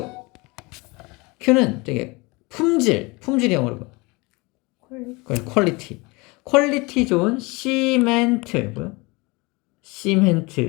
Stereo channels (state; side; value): quieter; right; 25.6 dB